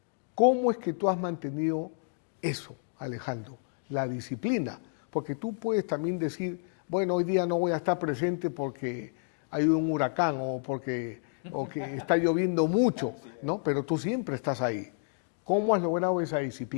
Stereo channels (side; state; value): right; silent; digital silence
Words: ¿cómo es que tú has mantenido eso, Alejandro? La disciplina. Porque tú puedes también decir, bueno, hoy día no voy a estar presente porque hay un huracán o que está lloviendo mucho, ¿no? Pero tú siempre estás ahí. ¿Cómo has logrado esa